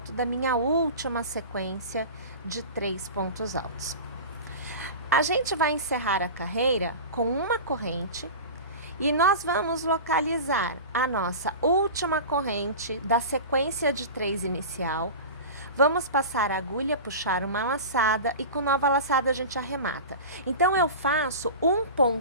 da minha última sequência de 3 pontos altos. A gente vai encerrar a carreira com uma corrente e nós vamos localizar a nossa última corrente da sequência de 3 inicial. Vamos passar a agulha, puxar uma laçada e com nova laçada a gente arremata. Então, eu faço um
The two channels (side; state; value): both; inverted; correlation -0.31